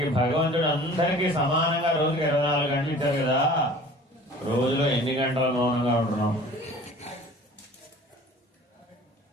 భగవంతుడు అందరికీ సమానంగా రోజుకి 24 గంటలు ఇచ్చారు కదా. రోజులో ఎన్ని గంటలు మౌనంగా ఉంటున్నాం?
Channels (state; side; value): normal; both; correlation 0.46